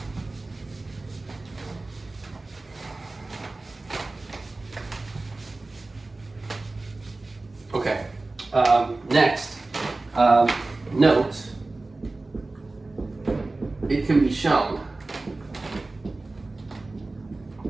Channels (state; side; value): quieter; left; 3.2 dB